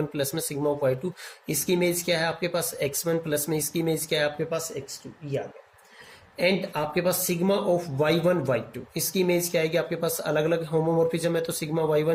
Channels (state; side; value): identical; both; correlation 1.00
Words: प्लस में सिग्मा ऑफ y2, इसकी इमेज क्या है आपके पास x1 प्लस में इसकी इमेज क्या है आपके पास x2, ये आ गया। एंड आपके पास सिग्मा ऑफ y1 y2, इसकी इमेज क्या आएगी आपके पास, अलग अलग होमोमॉर्फिज्म है तो सिग्मा